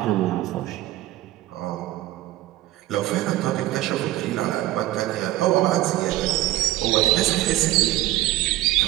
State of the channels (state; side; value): quieter; left; 16.1 dB